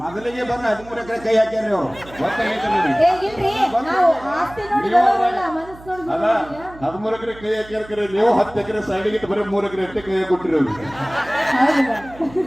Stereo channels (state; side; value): noise; right; hum, 20 dB below the sound